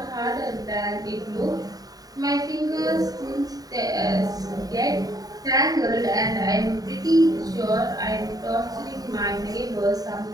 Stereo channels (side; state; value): left; late; 0.18 ms